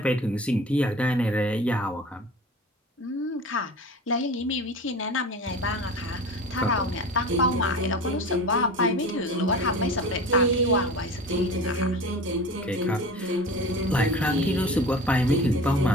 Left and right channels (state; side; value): normal; both; correlation 0.35